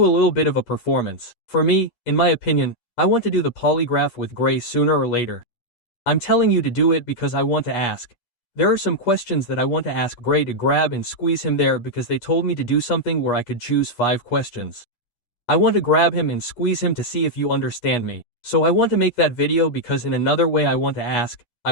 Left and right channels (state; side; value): late; right; 10 ms